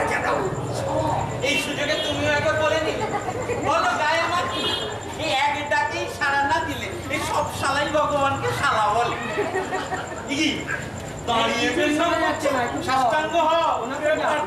এই সুযোগে তুমিও একবার বলে নিলে, বলো গায়ে আমার এই এক ডাকেই সাড়া না দিলে এই সব শালাই ভগবানকে শালা বলে। কি দাঁড়িয়ে সাষ্টাঙ্গ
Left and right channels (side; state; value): both; identical; correlation 1.00